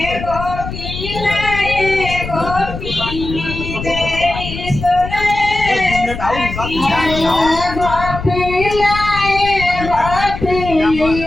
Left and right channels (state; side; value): noise; left; rumble, 8 dB below the sound